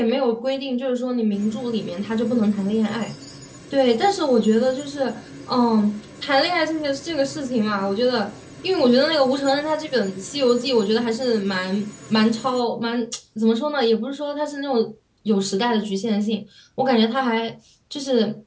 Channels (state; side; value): identical; both; correlation 1.00